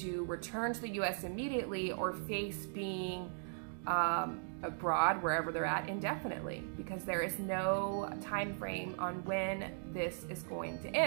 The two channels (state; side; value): silent; left; digital silence